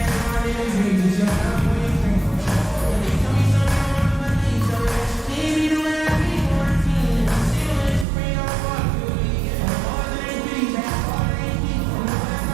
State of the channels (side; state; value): left; drops out; at 8.1 s